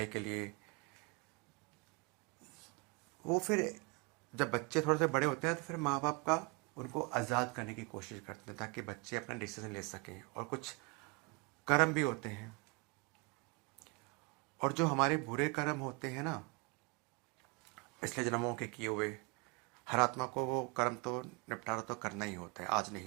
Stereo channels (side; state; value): left; quieter; 29.1 dB